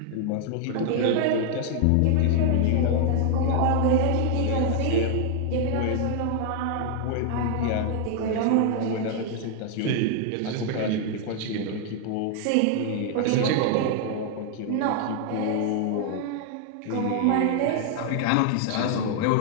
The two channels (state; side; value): different; both; correlation 0.00